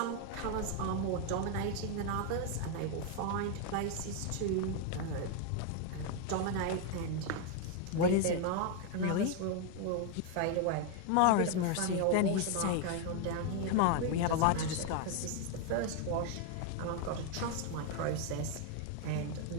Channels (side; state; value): both; different; correlation 0.01